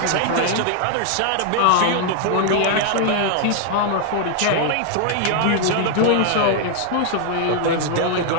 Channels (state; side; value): different; both; correlation 0.00